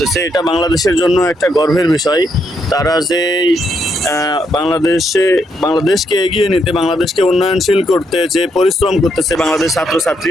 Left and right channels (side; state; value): both; normal; correlation 0.77